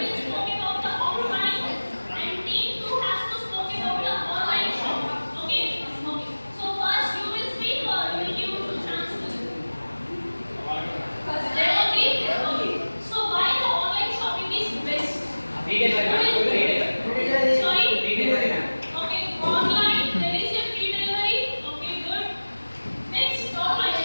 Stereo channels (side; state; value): both; inverted; correlation -1.00